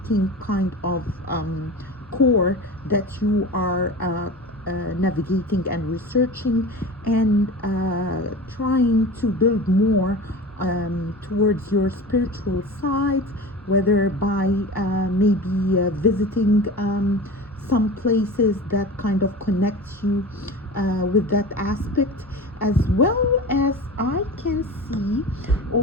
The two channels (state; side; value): normal; both; correlation 0.33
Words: kind of core that you are navigating and researching and trying to build more towards your spiritual side, whether by maybe visiting some places that kind of connect you with that aspect, as well as I can see